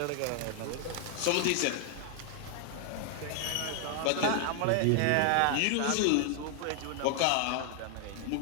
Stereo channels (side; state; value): both; different; correlation 0.00